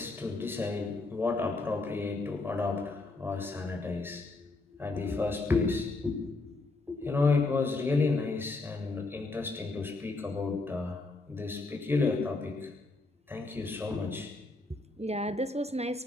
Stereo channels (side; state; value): right; quieter; 3.4 dB